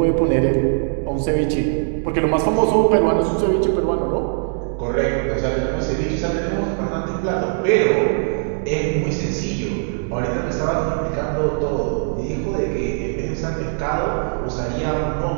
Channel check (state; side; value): silent; left; digital silence